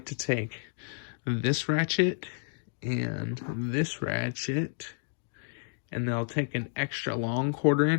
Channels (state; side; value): silent; right; digital silence